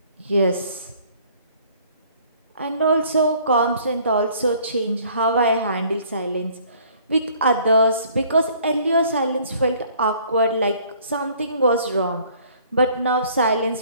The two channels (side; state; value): both; inverted; correlation -0.57